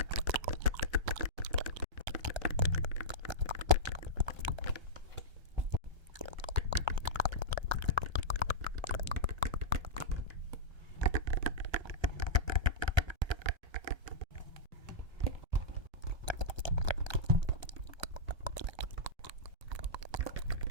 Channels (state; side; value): late; left; 1.3 ms